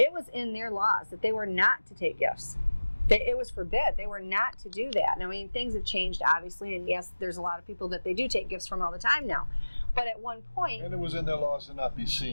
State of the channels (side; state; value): both; inverted; correlation -1.00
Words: was in their laws that they were not to take gifts. It was forbid. They were not to do that. And things have changed, obviously, and yes, there's a lot of people that they do take gifts from all the time now. But at one point... And it was in their laws to not be